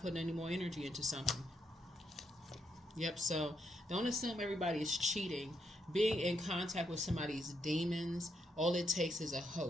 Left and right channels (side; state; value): both; normal; correlation 0.78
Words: putting any more energy into something. Yep, so don't assume everybody is cheating. Being in contact with somebody's demons, all it takes is a